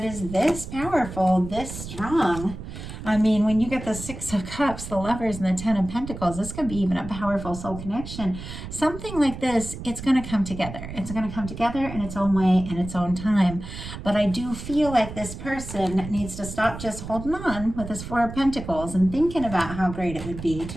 is this powerful, this strong. I mean, when you get the 6 of Cups, the Lovers, and the 10 of Pentacles, this could be even a powerful soul connection. Something like this, it's going to come together. It's going to come together in its own way, in its own time. But I do feel like this person needs to stop just holding on with this 4 of Pentacles and thinking about how great it would be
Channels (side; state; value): right; noise; rumble, 10 dB below the sound